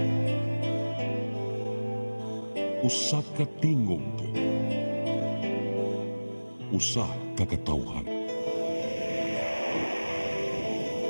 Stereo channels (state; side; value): inverted; both; correlation -1.00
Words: usa ka tingog, usa ka katawhan.